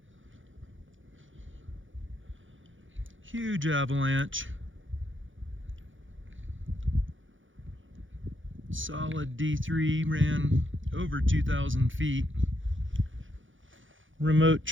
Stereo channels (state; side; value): late; left; 0.57 ms